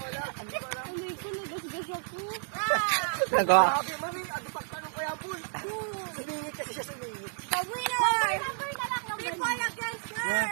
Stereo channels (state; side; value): silent; left; digital silence